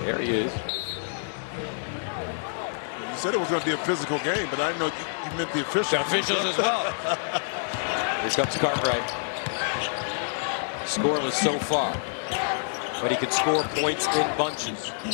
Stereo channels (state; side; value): silent; right; 58 dB below the other